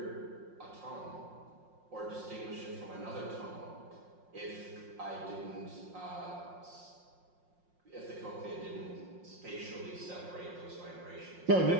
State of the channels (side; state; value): left; late; 5.6 ms